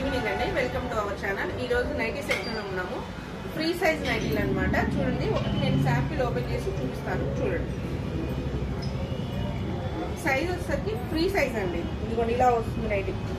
అండి. Welcome to our channel. ఈ రోజు నైటీ సెక్షన్ లో ఉన్నాము. ఫ్రీ సైజ్ నైటీలు అనమాట. చూడండి, ఒకటి నేను శాంపిల్ ఓపెన్ చేసి చూపిస్తాను. చూడండి, సైజ్ వచ్చేసరికి ఫ్రీ సైజ్ అండి. ఇదిగోండి, ఇలా వస్తుంది నైటీ.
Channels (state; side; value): identical; both; correlation 1.00